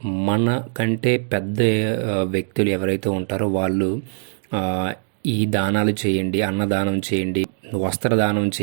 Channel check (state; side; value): silent; left; digital silence